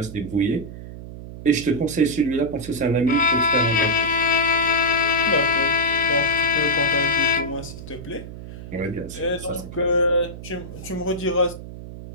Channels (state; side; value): noise; right; hum, 12 dB below the sound